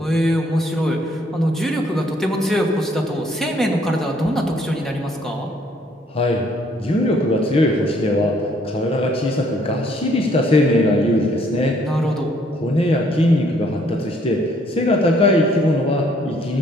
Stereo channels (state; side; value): normal; both; correlation 0.65